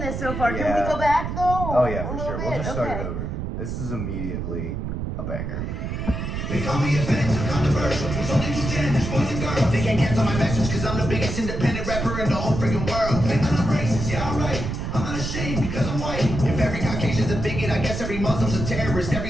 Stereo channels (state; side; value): noise; right; rumble, 4 dB below the sound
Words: this so far. Can Yeah. we go back though? Oh yeah, A for little sure. We'll bit? just start Okay. it over. This is immediately a banger. They call me offensive, controversial. There's only two genders, boys and girls. They can't cancel my message cause I'm the biggest independent rapper in the whole freaking world. Like I'm not racist, yeah, alright. I'm not ashamed because I'm white. If every Caucasian's a bigot, I guess every Muslim's a terrorist.